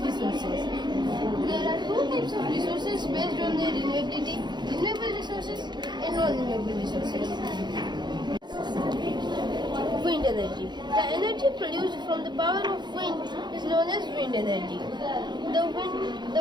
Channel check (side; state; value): left; late; 0.21 ms